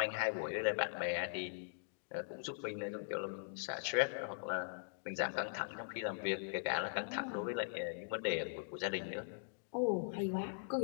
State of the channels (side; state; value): right; silent; digital silence